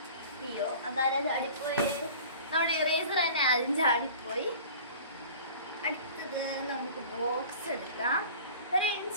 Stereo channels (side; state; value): both; inverted; correlation -0.42